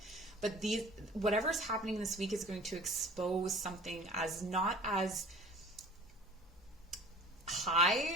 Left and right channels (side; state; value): both; normal; correlation 0.44